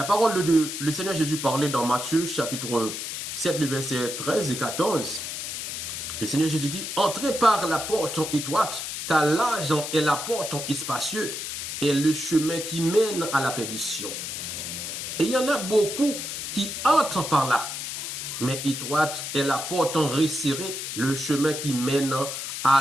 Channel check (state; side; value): noise; left; hiss, 5 dB below the sound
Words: parole de Dieu, le Seigneur Jésus parlait dans Matthieu chapitre 7, le verset 13 et 14. Le Seigneur Jésus dit, entrez par la porte étroite, car large est la porte espacieux et le chemin qui mène à la perdition. Et il y en a beaucoup qui entrent par là. Mais étroite est la porte resserrée, le chemin qui mène